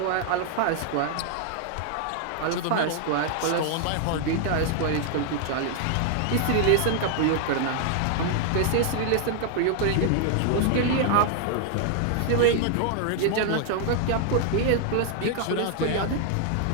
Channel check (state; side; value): different; both; correlation 0.00